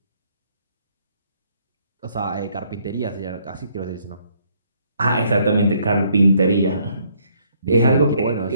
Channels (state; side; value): inverted; both; correlation -0.67